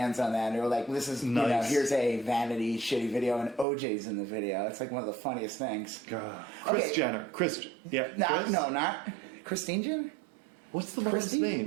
on that, and they were like, "This is nice. Here's a vanity shitty video, and OJ's in the video." It's one of the funniest things. God. Kris Jenner. No, not Christine Jenner. What's the mom's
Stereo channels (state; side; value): drops out; left; at 3.7 s